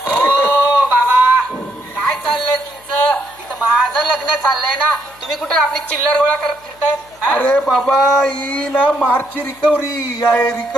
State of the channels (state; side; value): noise; left; hum, 29 dB below the sound